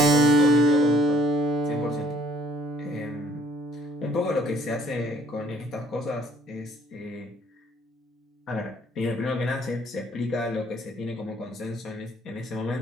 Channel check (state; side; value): normal; both; correlation 0.61